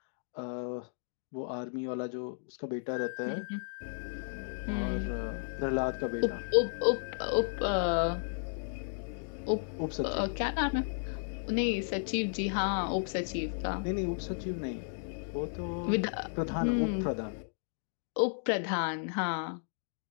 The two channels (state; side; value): silent; right; digital silence